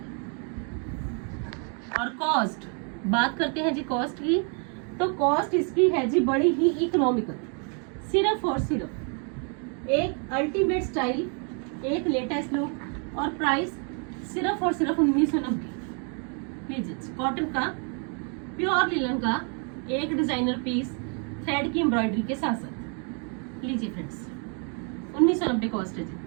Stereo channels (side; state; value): left; quieter; 39.6 dB